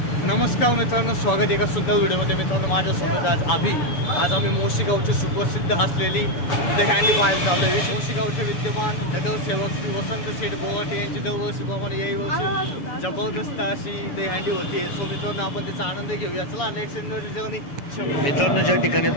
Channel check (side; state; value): right; late; 7.0 ms